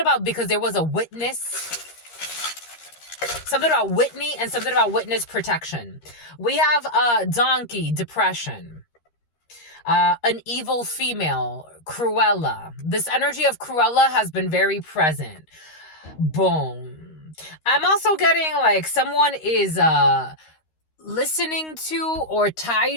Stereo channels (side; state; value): right; late; 13 ms